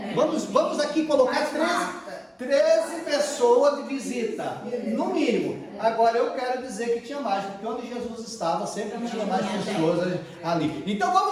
Vamos aqui colocar 13 pessoas de visita, no mínimo. Agora eu quero dizer que tinha mais, porque onde Jesus estava sempre tinha mais pessoas ali. Então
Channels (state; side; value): identical; both; correlation 1.00